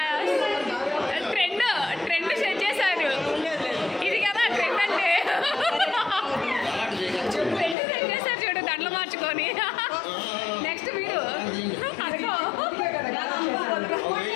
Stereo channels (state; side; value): drops out; right; at 7.8 s